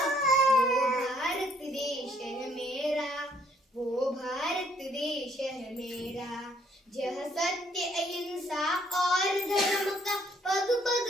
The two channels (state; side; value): normal; both; correlation 0.66